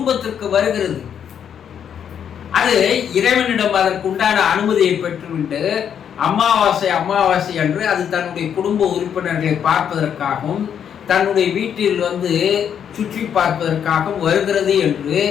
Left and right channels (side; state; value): right; quieter; 8.5 dB